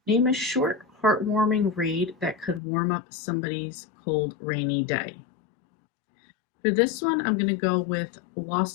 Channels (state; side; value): drops out; right; at 2.6 s